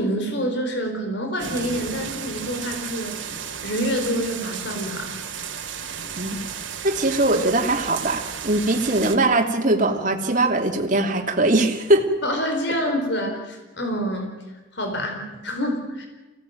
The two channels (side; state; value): both; normal; correlation 0.16